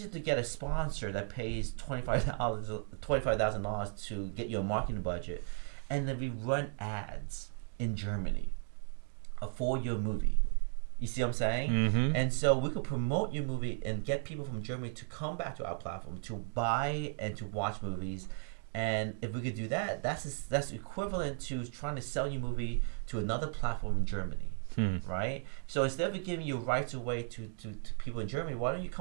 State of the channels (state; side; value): silent; left; 54 dB below the other